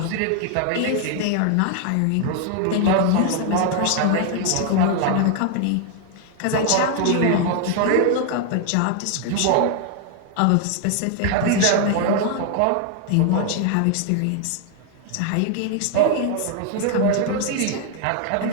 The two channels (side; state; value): both; different; correlation 0.00